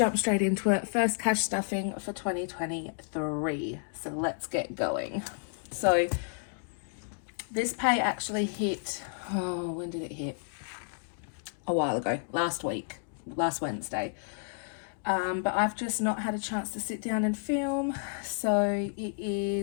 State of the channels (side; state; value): right; silent; digital silence